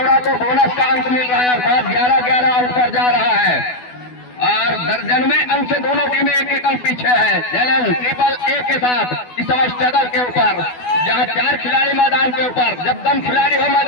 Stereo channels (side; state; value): right; late; 12 ms